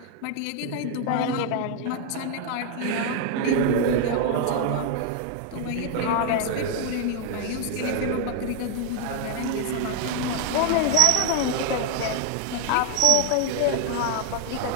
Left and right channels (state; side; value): different; both; correlation 0.00